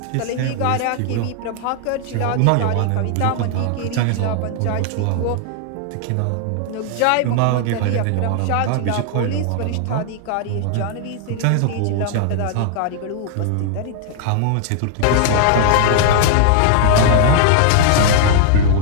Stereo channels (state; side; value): different; both; correlation 0.00